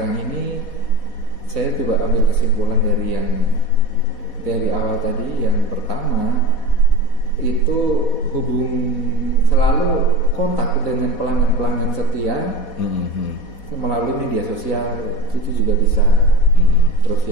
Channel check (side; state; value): right; late; 4.1 ms